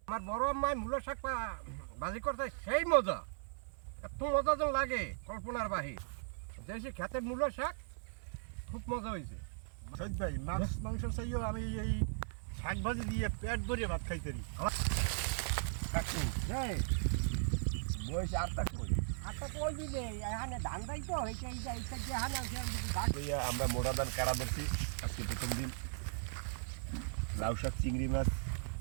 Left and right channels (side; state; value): left; silent; 53 dB below the other